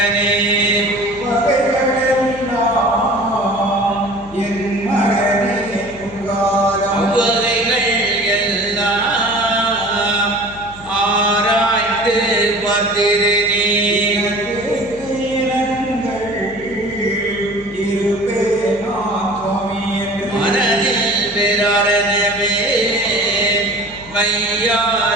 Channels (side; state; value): left; noise; hum, 19 dB below the sound